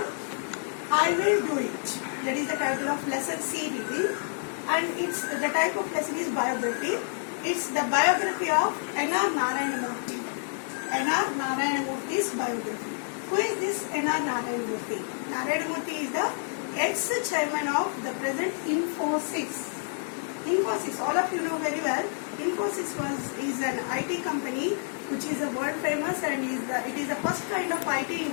I will do it. That is the title of lesson C reading, and it's the type of lesson is biography. It's the biography of N.R. Narayanamurthy. N.R. Narayanamurthy's biography. Who is this N.R. Narayanamurthy? Narayanamurthy is the ex-chairman of the present Infosys. Infosys, all of you know very well. Infosys is an IT company which is a world famous, and it is the first kind of IT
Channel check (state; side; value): silent; right; 59 dB below the other